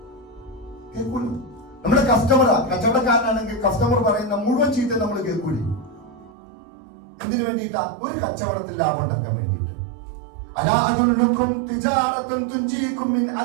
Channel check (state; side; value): drops out; left; at 6.3 s